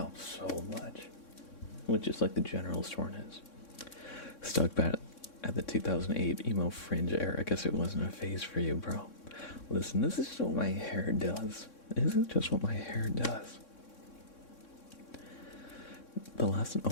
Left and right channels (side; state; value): right; late; 3.6 ms